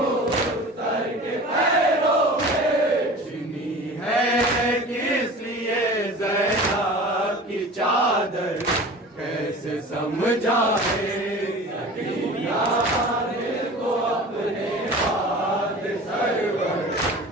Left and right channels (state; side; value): normal; both; correlation 0.38